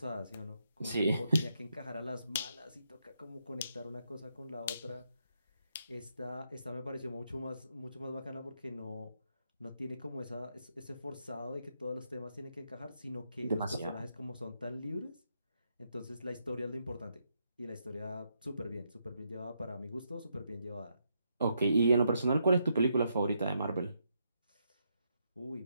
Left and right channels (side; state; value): both; inverted; correlation -0.79